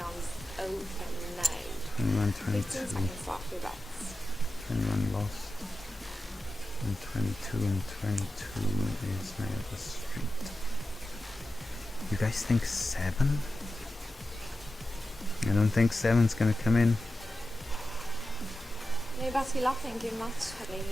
open now. 21, 15 22. seconds after that. 21 lost. And 22 and 22 is my other street. You guys think 7? I don't think 7's gonna come in. No, but we love thank you much,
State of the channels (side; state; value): both; normal; correlation 0.93